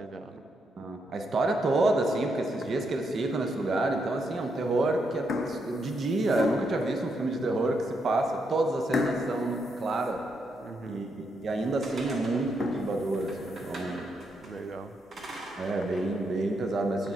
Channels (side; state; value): both; normal; correlation 0.79